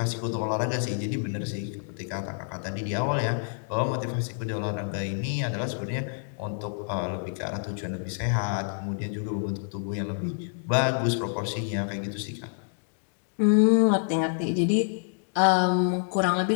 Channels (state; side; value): silent; right; digital silence